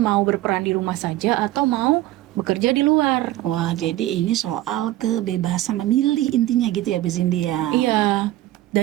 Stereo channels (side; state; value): left; quieter; 15.6 dB